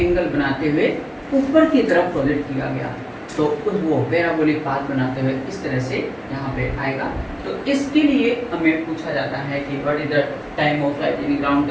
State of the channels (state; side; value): identical; both; correlation 1.00